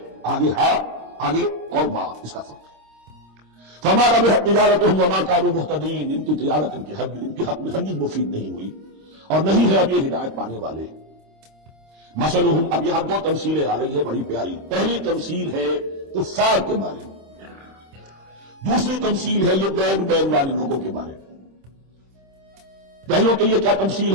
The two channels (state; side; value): late; left; 26 ms